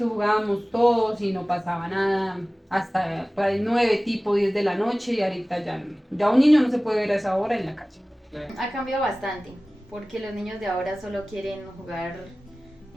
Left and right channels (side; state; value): both; normal; correlation 0.98